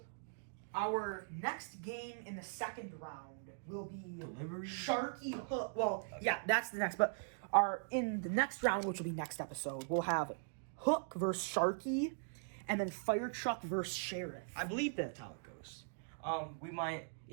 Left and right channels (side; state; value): left; silent; digital silence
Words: our next game in the second round will be Delivery? Sharky Hook. Well, yeah, that's the next. But in the next round, which will be next episode, we'll have Hook versus Sharky, and then Fire Truck versus Sheriff. I believe that's how it goes.